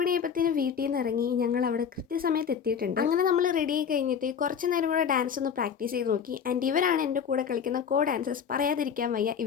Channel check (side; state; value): right; quieter; 7.4 dB